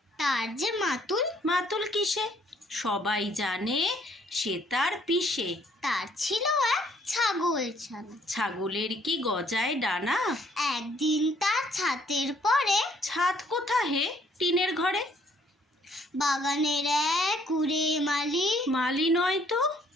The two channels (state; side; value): normal; both; correlation 0.64